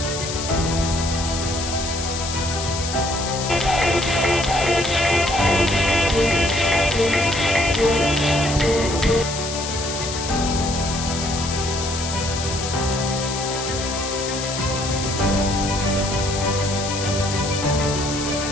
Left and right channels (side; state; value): left; noise; hiss, 6 dB below the sound